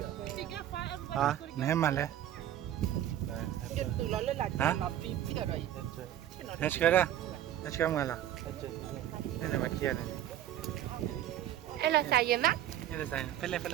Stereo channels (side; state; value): left; quieter; 11.7 dB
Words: nè mà lên hả let's go mà là đây là mặt kia này Ai là sao vậy má? đây là sai phải